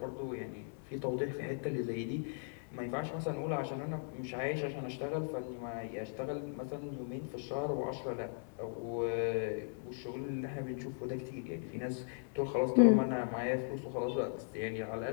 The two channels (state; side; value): silent; right; digital silence